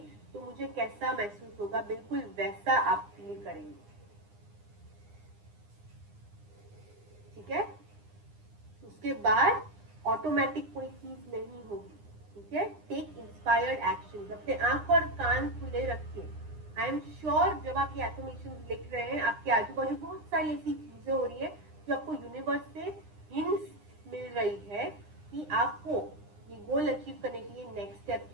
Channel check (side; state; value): left; late; 9.8 ms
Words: तो मुझे कैसा महसूस होगा, बिल्कुल वैसा आप फील करेंगे, ठीक है। उसके बाद ऑटोमेटिक कोई चीज नहीं होगी, ठीक है। टेक इंस्पायर्ड एक्शन, अपने आंख और कान खुले रखिए। आई एम श्योर जब आप ये एफर्मेशन लिख रहे हैं, आपके आजू बाजू बहुत सारी ऐसी चीजें हो रही है जो आपको यूनिवर्स से हिंट्स मिल रही है कि आपको ये गोल अचीव करने के लिए नेक्स्ट स्टेप